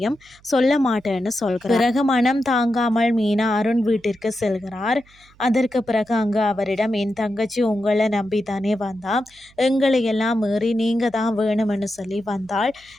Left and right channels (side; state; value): right; noise; hum, 29 dB below the sound